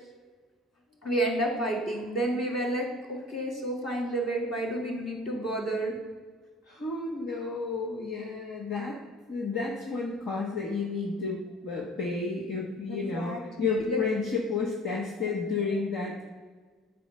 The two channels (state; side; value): normal; both; correlation 0.44